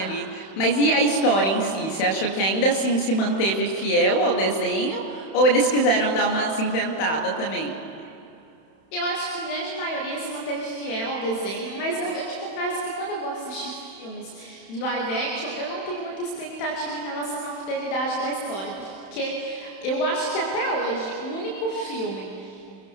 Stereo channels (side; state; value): right; late; 31 ms